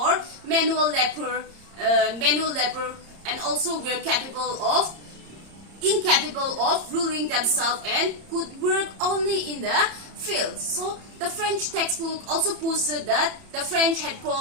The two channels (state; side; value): late; left; 30 ms